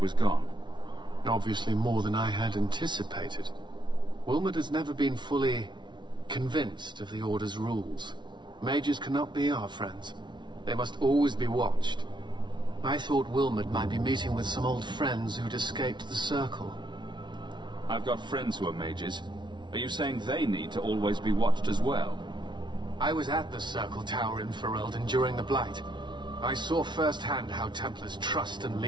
gone? Obviously more than I had anticipated. Wilmod has never been fully convinced of the Order's rules. Mages cannot be our friends. They must always be watched. I thought Wilmod might be meeting with some old friends who'd escaped the Circle. I've got friends who are mages. Are you saying they need to always be watched as well? I was at the Circle Tower in Ferelden during the Blight. I saw firsthand how Templars' trust and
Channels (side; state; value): left; late; 0.22 ms